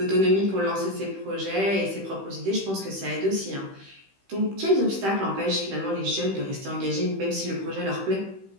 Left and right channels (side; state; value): left; late; 15 ms